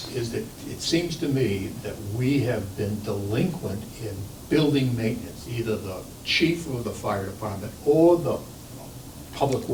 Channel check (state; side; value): identical; both; correlation 1.00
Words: is that it seems to me that we have been delinquent in building maintenance, either the chief of the fire department or the public